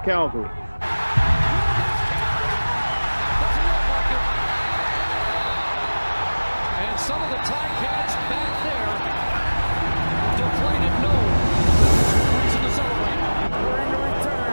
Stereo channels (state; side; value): inverted; both; correlation -1.00